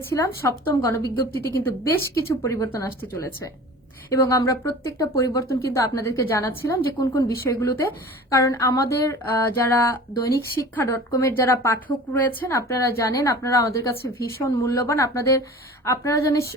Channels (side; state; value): both; normal; correlation 0.40